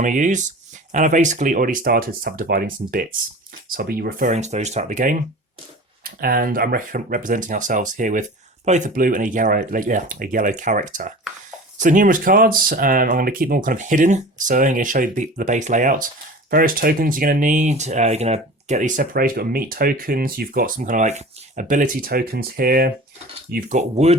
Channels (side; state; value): both; normal; correlation 0.38